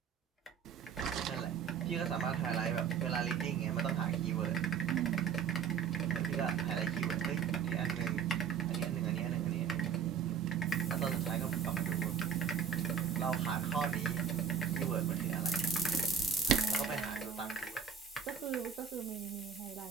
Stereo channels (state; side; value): quieter; left; 6.9 dB